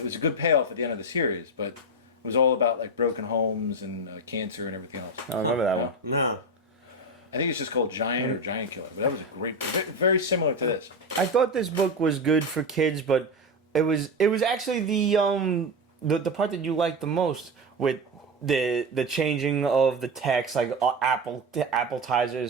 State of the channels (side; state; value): both; normal; correlation 0.16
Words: was a good payoff at the end of the series, but it was all about like broken homes and cancer and everything else. I remember that one. No. I think it's just called Giant or Giant Killer, but that was a great, very similar to this. I thought this book was good for kids, but it was actually the part that you liked the most with the changing of the text, like